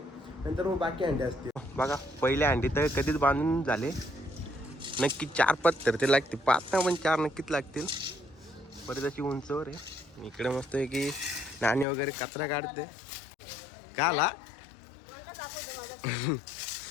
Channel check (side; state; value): right; drops out; at 11.9 s